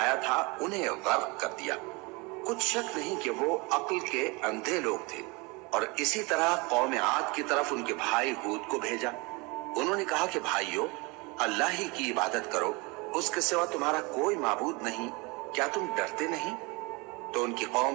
تھا انہیں غرق کر دیا۔ کچھ شک نہیں کہ وہ عقل کے اندھے لوگ تھے۔ اور اسی طرح قوم عاد کی طرف ان کے بھائی ہود کو بھیجا۔ انہوں نے کہا کہ بھائیو، اللہ ہی کی عبادت کرو، اس کے سوا تمہارا کوئی معبود نہیں، کیا تم ڈرتے نہیں؟ تو ان کی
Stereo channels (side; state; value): left; quieter; 27.2 dB